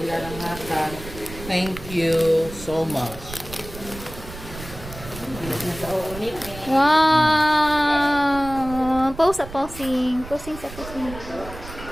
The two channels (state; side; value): noise; right; rumble, 13 dB below the sound